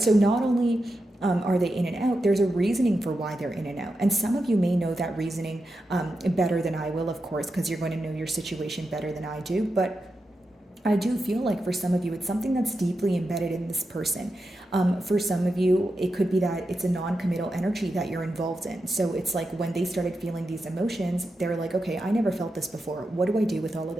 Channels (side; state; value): both; normal; correlation 0.88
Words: So not only are they in and out, there's a reasoning for why they're in and out. And some of you may know that reasoning better than I will, of course, because you're going to know your situation better than I do. But I do feel like for some of you, it's something that's deeply embedded in this person. For some of you, it could be that it's a non-committal energy that you're involved in. So it's like when they started feeling these emotions, they're like, okay, I never felt this before. What do I do with all of